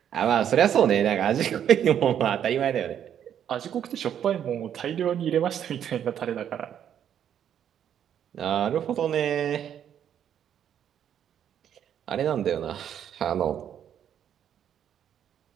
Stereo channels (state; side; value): quieter; left; 9.5 dB